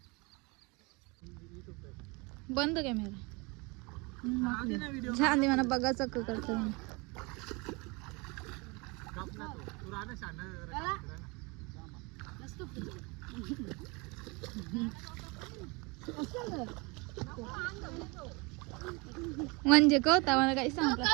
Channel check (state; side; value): quieter; left; 28.0 dB